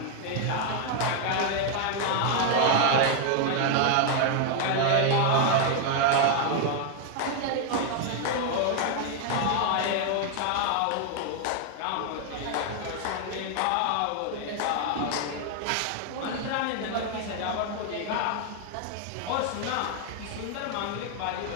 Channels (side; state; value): both; different; correlation 0.01